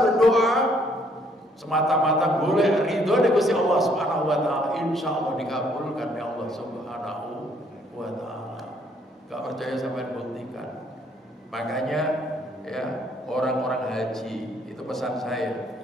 semata-mata boleh ridho dari Gusti Allah Subhanahu wa taala, insyaallah dikabulkan oleh Allah Subhanahu wa taala. Gak percaya sampai buktikan. Makanya ya, orang-orang haji itu pesan saya.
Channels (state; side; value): normal; both; correlation 0.66